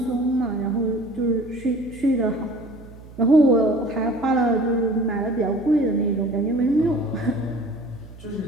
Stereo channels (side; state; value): right; noise; hum, 19 dB below the sound